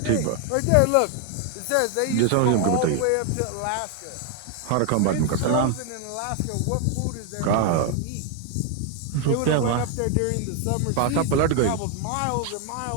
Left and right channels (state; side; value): different; both; correlation 0.00